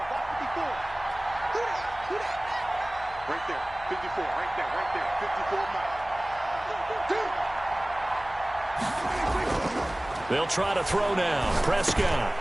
Right there, 54, right there, 54 miles. They'll try to throw now. Prescott.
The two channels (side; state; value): left; noise; hum, 18 dB below the sound